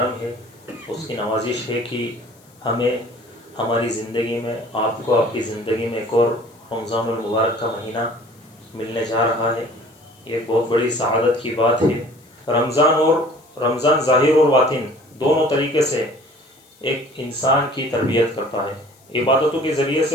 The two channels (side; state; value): left; noise; hiss, 30 dB below the sound